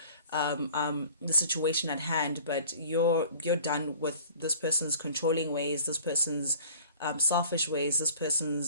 the situation at hand. But you're done with this person's controlling ways, this person's selfish ways, this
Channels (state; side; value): inverted; both; correlation -0.48